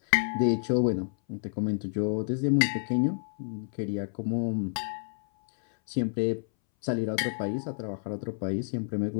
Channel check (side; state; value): right; silent; 58 dB below the other